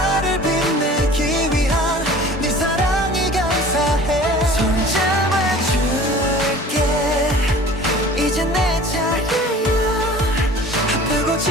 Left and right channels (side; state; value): both; normal; correlation 0.45